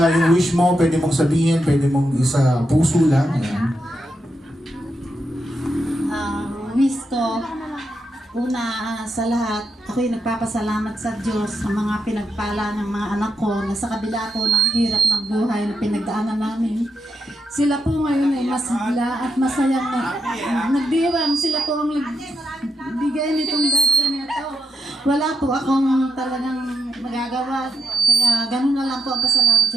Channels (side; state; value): both; normal; correlation 0.84